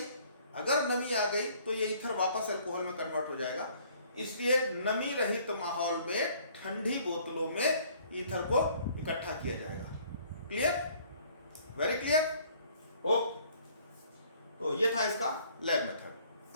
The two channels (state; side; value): inverted; both; correlation -0.58